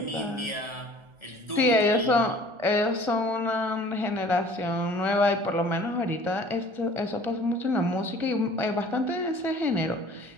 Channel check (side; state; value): left; late; 1.4 ms